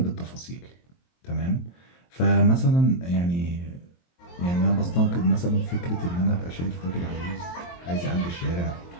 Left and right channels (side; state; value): right; late; 23 ms